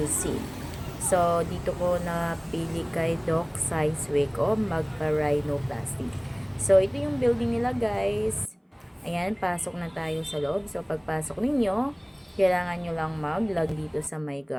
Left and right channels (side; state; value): both; identical; correlation 1.00